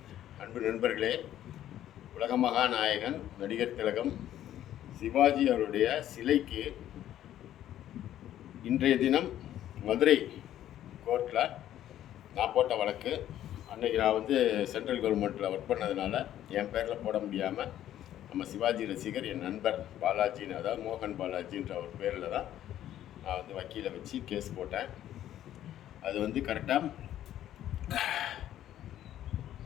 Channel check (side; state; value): right; quieter; 12.0 dB